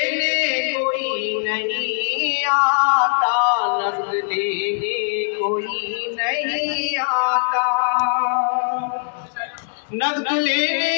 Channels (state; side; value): silent; right; digital silence